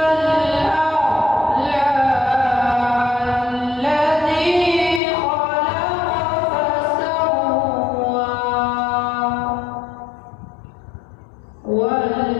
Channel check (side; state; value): right; drops out; at 5.0 s